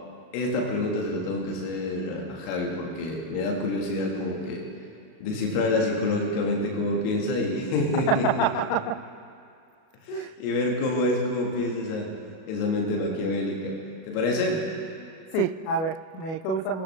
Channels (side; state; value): right; late; 37 ms